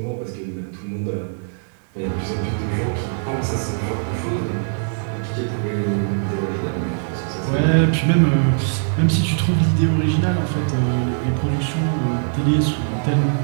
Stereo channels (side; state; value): left; silent; digital silence